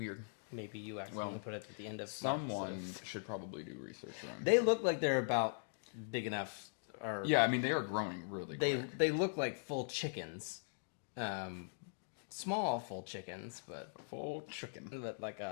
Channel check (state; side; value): silent; right; digital silence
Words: Maybe you accidentally put it at the end of Someone March, so. should probably do research around. They look like they're about big enough. Or Yeah, I mean, they are growing really quick. they look like full chickens. Small full chickens, but Full chicken. like